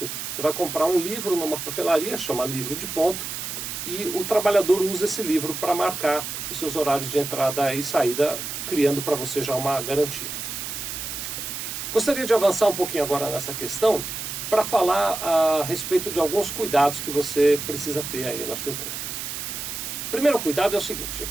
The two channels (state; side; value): noise; right; hiss, 6 dB below the sound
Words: Você vai comprar um livro numa papelaria, chama livro de ponto, e o trabalhador usa esse livro para marcar os seus horários de entrada e saída, criando para você já uma garantia. Gostaria de avançar um pouquinho agora nessa questão para falar a respeito de alguns cuidados que você precisa ter aí na sua empresa. O primeiro cuidado é o seguinte, é